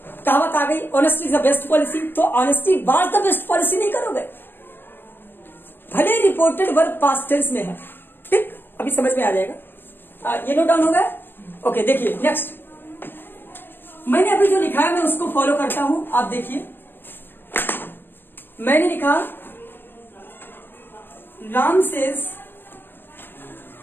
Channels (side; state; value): right; late; 0.098 ms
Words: कहावत आ गई, honesty is the best policy, तो honesty was the best policy नहीं करोगे, भले रिपोर्टेड वर्ब पास्ट टेंस में है। ठीक, अभी समझ में आ जाएगा। ये नोट डाउन हो गया। ओके, देखिए नेक्स्ट, मैंने अभी जो लिखा है मैं उसको फॉलो करता हूं। आप देखिए, मैंने लिखा राम